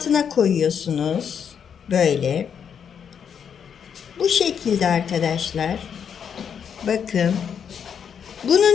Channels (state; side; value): quieter; right; 7.6 dB